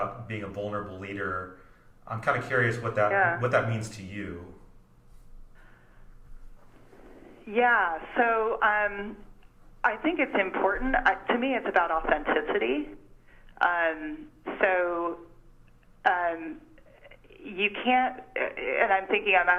being a vulnerable leader. I'm kind of curious what that means to you. Yeah, so I think it's important. To me, it's about authenticity. You can't, and I'm thinking, I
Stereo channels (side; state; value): both; identical; correlation 1.00